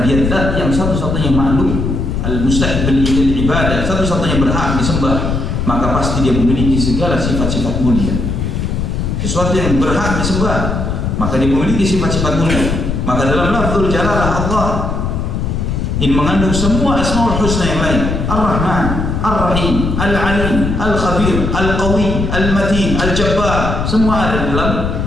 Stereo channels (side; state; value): left; noise; rumble, 2 dB below the sound